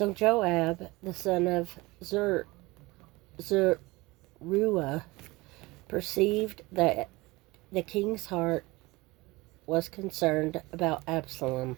Joab, the son of Zeruiah, perceived that the king's heart was concerned about Absalom.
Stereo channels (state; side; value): quieter; left; 22.0 dB